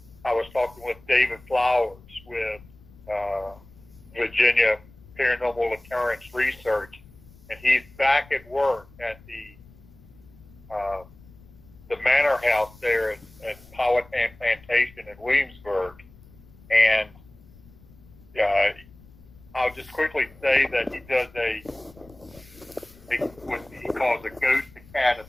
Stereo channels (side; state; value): left; noise; rumble, 23 dB below the sound